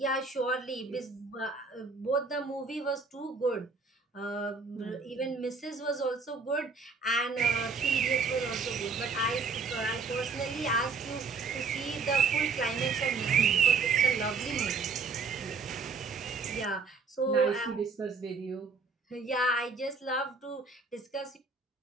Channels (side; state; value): left; quieter; 4.6 dB